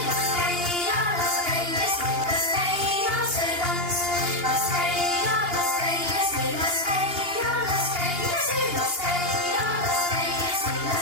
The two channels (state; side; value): late; left; 2.8 ms